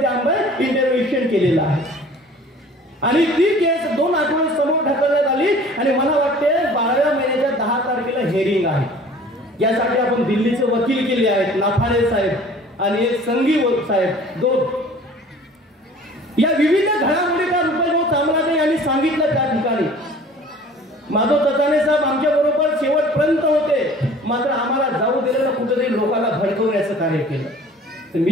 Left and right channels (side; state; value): both; normal; correlation 0.48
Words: आम्ही इंटरव्हेन्शन केलेलं आहे आणि ती केस 2 आठवडे समोर ढकलण्यात आली आणि मला वाटते 12व्या महिन्याच्या 10 तारखेला हेअरिंग आहे. यासाठी आपण दिल्लीचे वकील केले आहेत, नाफाडे साहेब आणि एक संघी साहेब, 2. या विविध घडामोडीचा रुपये चामराजे यांनी सांगितलं त्या ठिकाणी. माधव चचाने साहेब आमच्या बरोबर शेवटपर्यंत होते, मात्र आम्हाला जाऊ दिलेलं कुठेतरी लोकांना भडकवण्याचं कार्य केलं. तर